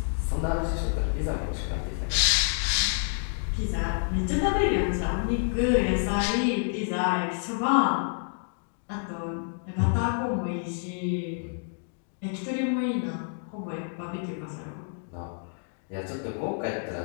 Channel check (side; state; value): right; silent; digital silence